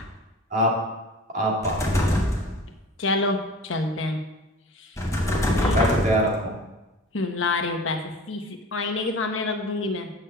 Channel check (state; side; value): normal; both; correlation 0.40